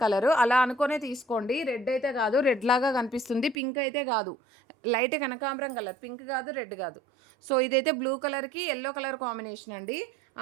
కలరు, అలా అనుకునే తీసుకోండి. రెడ్ అయితే కాదు, రెడ్ లాగా కనిపిస్తుంది. పింక్ అయితే కాదు, లైట్ కనకాంబరం కలర్, పింక్ కాదు, రెడ్ కాదు. సో ఇదైతే బ్లూ కలర్కి ఎల్లో కలర్ కాంబినేషన్ అండి,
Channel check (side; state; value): left; drops out; at 3.6 s